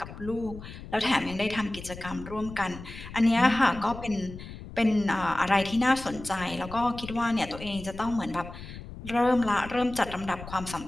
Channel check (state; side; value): noise; left; rumble, 13 dB below the sound